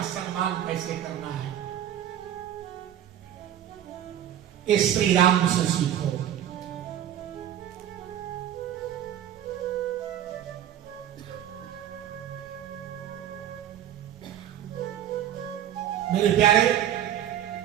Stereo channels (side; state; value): left; quieter; 10.9 dB